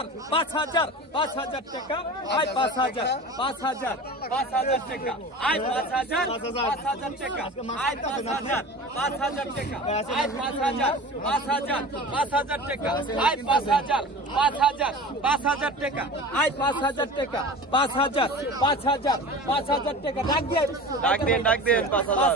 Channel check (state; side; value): normal; both; correlation 0.35